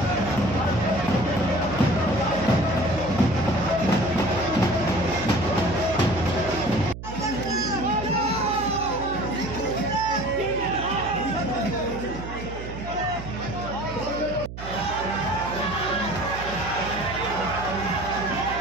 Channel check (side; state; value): right; noise; hum, 10 dB below the sound